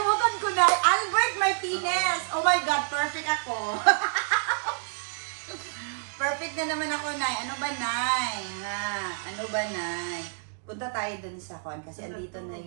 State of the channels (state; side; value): silent; left; digital silence